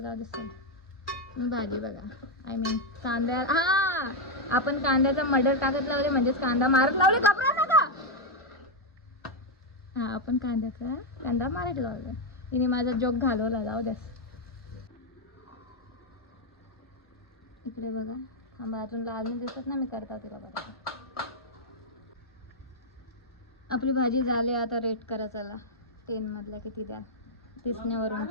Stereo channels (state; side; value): normal; both; correlation 0.02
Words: दिसतं तुम्ही भाजी बघा. आय मीन कांद्या, हा आपण कांद्याचा मडर टाकत लावले म्हणजेच कांदा मारत लावले. घाबरा नका. हा आपण कांदा मारत लावला. तिने माझा जोक घालवला. जाऊ द्यास. इकडे बघा, थांबा अजून लाल दिसत ना, मी करता तिला बघा. आपली भाजी झाली. आता रेट करा चला 10 मधला किती द्या, दिसण्यावरून